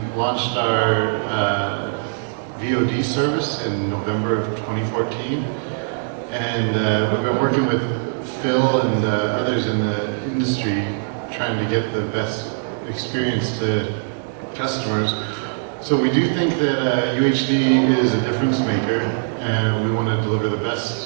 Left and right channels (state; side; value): silent; left; digital silence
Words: launched our VOD service in November of 2014. And we've been working with Phil and others in the industry trying to get the best experience to customers. So we do think that UHD is a difference maker, and we want to deliver the